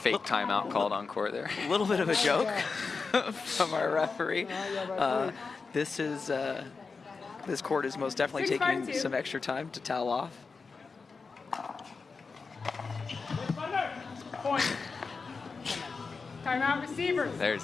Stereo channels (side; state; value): right; quieter; 4.6 dB